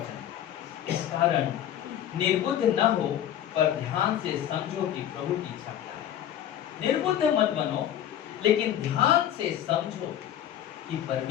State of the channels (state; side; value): quieter; right; 10.9 dB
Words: इस कारण निर्बुद्ध न हो पर ध्यान से समझो कि प्रभु की इच्छा क्या है। निर्बुद्ध मत बनो, लेकिन ध्यान से समझो कि